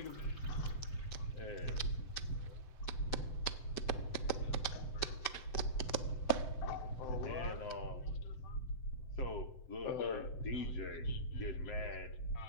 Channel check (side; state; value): right; late; 7.8 ms